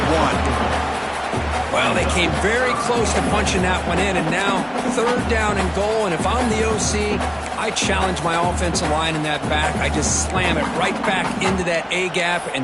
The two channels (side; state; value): both; identical; correlation 1.00